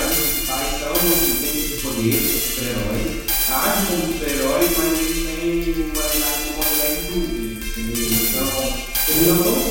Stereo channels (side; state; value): both; identical; correlation 1.00